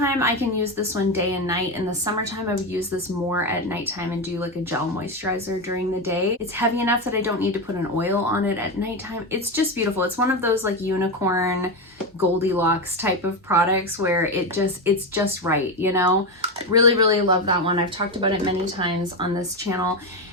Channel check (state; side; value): normal; both; correlation 0.14